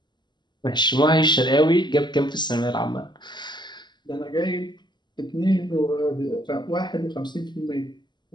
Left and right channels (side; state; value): right; late; 0.21 ms